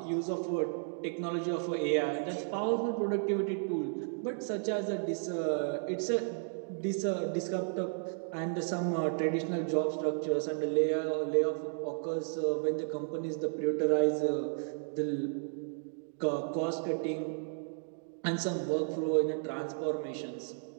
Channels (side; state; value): left; silent; digital silence